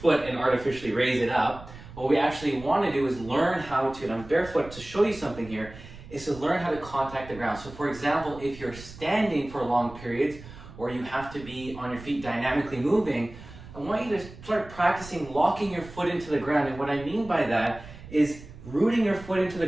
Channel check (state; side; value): noise; right; rumble, 16 dB below the sound